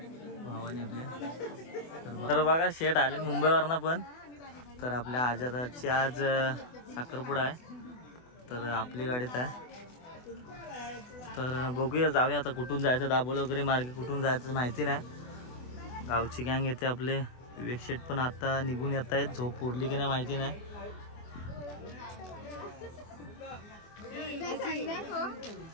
भावाने आपल्या. तर बघा शेट आले मुंबईवरनं पण. तर आपल्या आजादाची आज साखरपुडा आहे. तर आपली गाडीत आहे. तर बघूया जाऊया आता कुठून जायचं. दाबोली वगैरे मार्गे कुठून जायचं माहिती नाही. गावची गँग येते आपले. विवेक शेट पण आता निघून येत आहेत. झोप उरली की नाही माहिती नाही.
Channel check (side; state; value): right; late; 24 ms